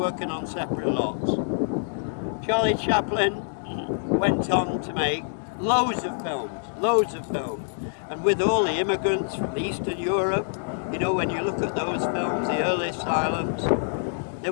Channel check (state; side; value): silent; right; digital silence